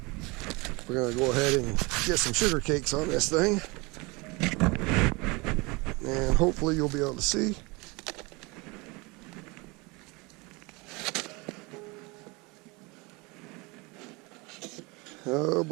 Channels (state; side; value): quieter; left; 26.2 dB